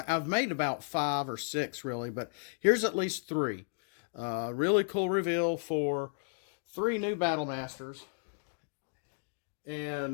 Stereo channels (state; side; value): silent; right; digital silence